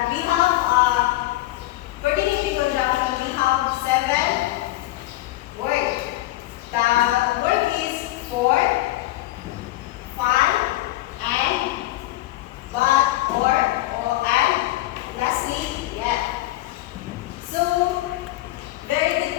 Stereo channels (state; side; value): quieter; right; 17.1 dB